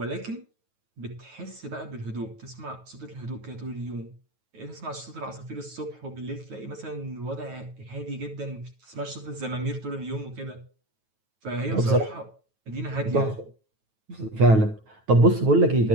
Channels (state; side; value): late; left; 9.2 ms